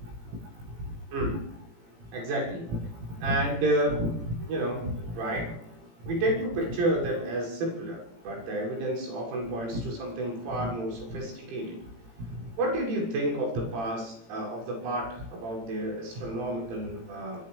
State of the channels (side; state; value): left; late; 18 ms